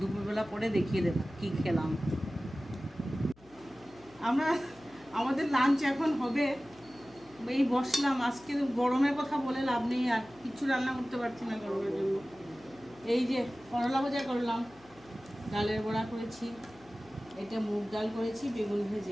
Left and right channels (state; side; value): noise; left; hum, 26 dB below the sound